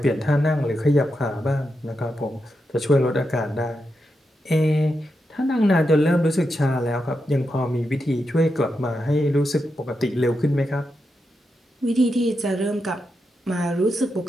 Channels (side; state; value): both; normal; correlation 0.86